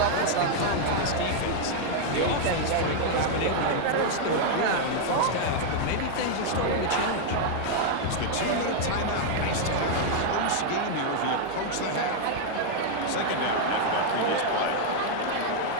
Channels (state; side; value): different; both; correlation 0.00